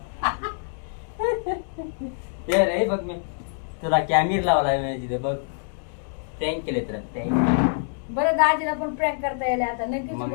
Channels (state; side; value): silent; right; digital silence